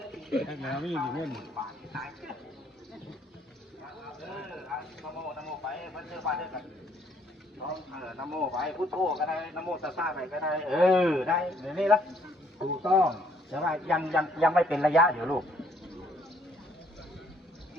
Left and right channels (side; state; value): both; normal; correlation 0.65